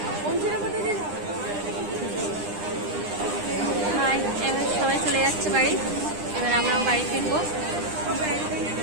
এবার সবাই চলে যাচ্ছে বাড়ি, এবার আমরাও বাড়ি ফিরবো।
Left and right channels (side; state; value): left; late; 9.9 ms